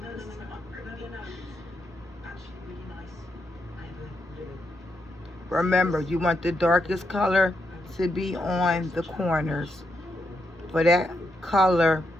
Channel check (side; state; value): both; normal; correlation 0.81